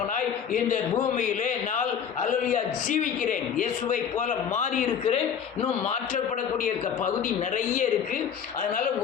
இந்த பூமியிலே நான் அல்லேலூயா ஜீவிக்கிறேன். இயேசுவை போல மாறி இருக்கிறேன். இன்னும் மாற்றப்படக்கூடிய பகுதி நிறைய இருக்கு. அதனால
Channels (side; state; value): right; quieter; 7.7 dB